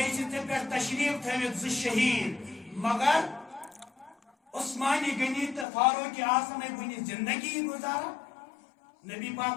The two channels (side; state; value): right; drops out; at 5.7 s